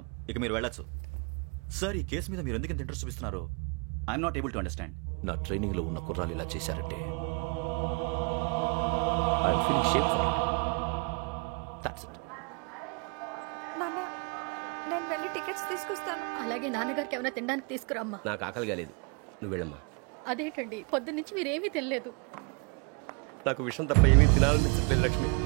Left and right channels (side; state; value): left; quieter; 33.2 dB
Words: ఇక మీరు వెళ్ళొచ్చు. సార్, ఈ కేసు మీద మీరు ఎందుకు ఇంత ఇంట్రెస్ట్ చూపిస్తున్నారు? I'm not able to understand. నా ట్రైనింగ్ లో ఉన్న కుర్రాలు ఇలా చేశారంటే I'm feeling shame for it. That's it. నాన్న, నేను వెళ్ళి టికెట్స్ తీసుకొస్తాను. అలాగే నాన్నగారికి ఏమైనా తినడానికి తీసుకురామ్మా. నాకు ఆకలి కాలేదు, నువ్వు వెళ్ళమ్మా. అదేంటండి, పొద్దున్నుంచి మీరేమీ తినలేదు. నాకు విషయం తప్ప ఏమీ తినాలనిపించట్లేదు లక్ష్మి.